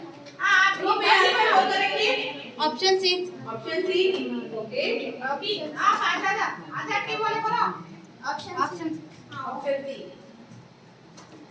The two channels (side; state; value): both; identical; correlation 1.00